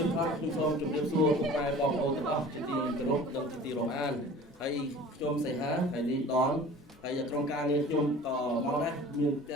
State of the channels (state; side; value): normal; both; correlation 0.43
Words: ផ្នែកខ្ញុំសូមជម្រាបសួរពុកម៉ែបងប្អូនទាំងអស់ជាទីគោរពនិងជាទីរាប់អានហើយខ្ញុំសីហាហើយនេះដនហើយក្រុមការងារខ្ញុំក៏មកដែរមានទ